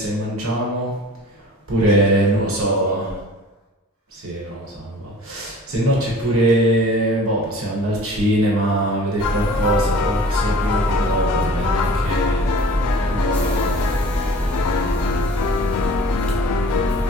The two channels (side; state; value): both; normal; correlation 0.45